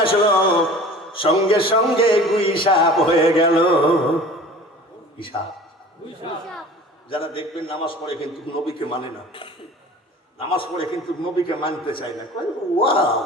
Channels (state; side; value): normal; both; correlation 0.42